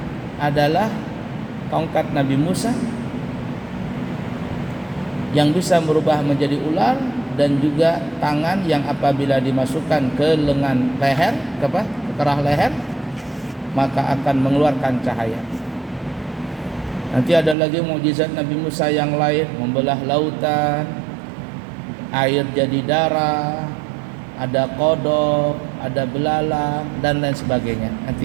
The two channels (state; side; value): drops out; left; at 17.6 s